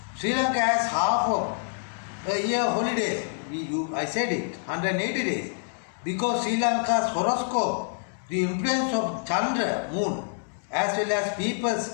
Sri Lanka has half of a year holidays. I said it, 180 days. Because Sri Lanka's horoscope, the influence of Chandra, moon, as well as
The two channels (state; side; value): silent; right; digital silence